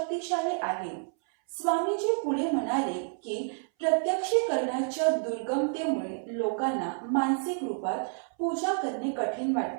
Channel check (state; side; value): silent; left; 58 dB below the other